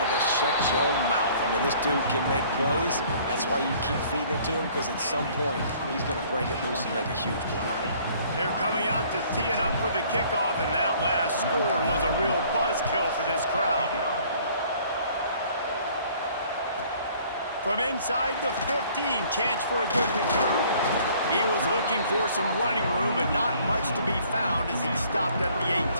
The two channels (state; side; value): inverted; both; correlation -0.56